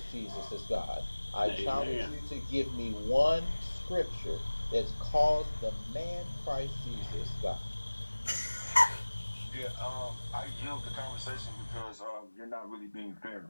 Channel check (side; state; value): both; inverted; correlation -1.00